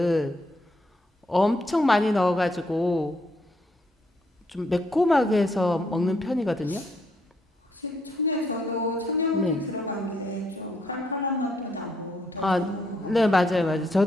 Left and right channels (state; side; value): normal; both; correlation 0.74